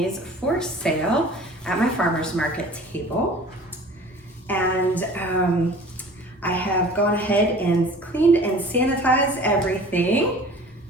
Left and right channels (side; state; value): both; normal; correlation 0.45